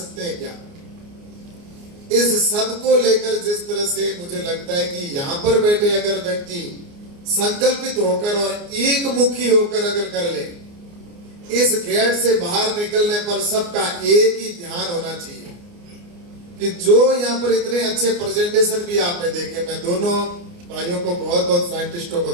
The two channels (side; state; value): left; late; 29 ms